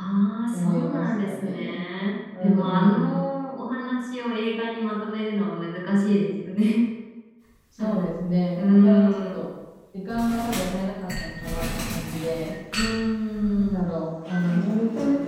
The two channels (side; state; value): both; identical; correlation 1.00